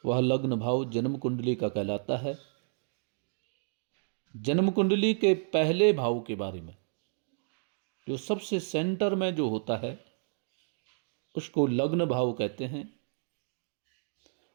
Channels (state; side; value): silent; left; digital silence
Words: वह लग्न भाव जन्म कुंडली का कहलाता है। जन्म कुंडली के पहले भाव के बारे में, जो सबसे सेंटर में जो होता है उसको लग्न भाव कहते हैं।